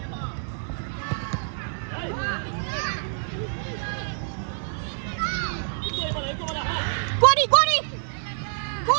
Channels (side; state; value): left; silent; digital silence